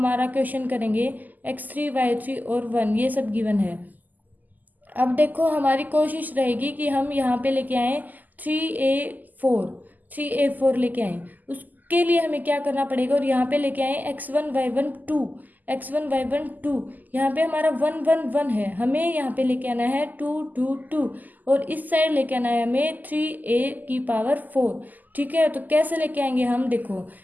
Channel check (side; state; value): left; late; 0.083 ms